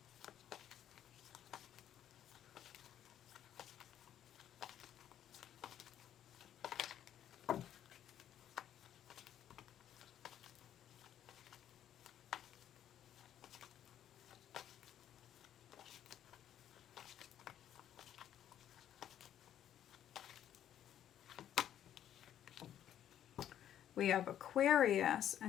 We have Aquarius,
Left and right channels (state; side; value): quieter; right; 10.7 dB